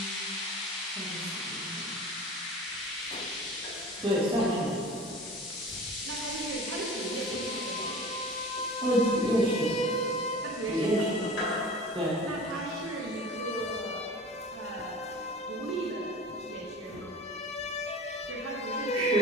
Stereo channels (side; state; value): both; normal; correlation 0.38